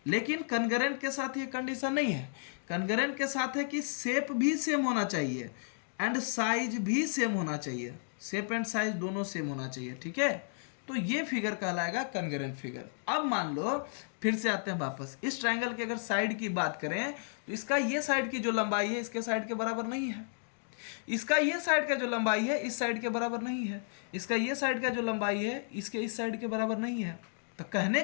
लेकिन कन्ग्रेंट के साथ ये कंडीशन नहीं है। कन्ग्रेंट के साथ है कि शेप भी सेम होना चाहिए एंड साइज भी सेम होना चाहिए, शेप एंड साइज दोनों सेम होना चाहिए। ठीक है, तो ये फिगर कहलाएगा कन्ग्रेंट फिगर। अब मान लो, फिर से आते हैं वापस, इस ट्रायंगल की अगर साइड की बात करें तो इसका ये साइड की जो लंबाई है इसके साइड के बराबर नहीं है, इसका ये साइड का जो लंबाई है इस साइड के बराबर नहीं है, इसका ये साइड का जो लंबाई है इसके इस साइड के बराबर नहीं है। तो कहने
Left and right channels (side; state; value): right; silent; digital silence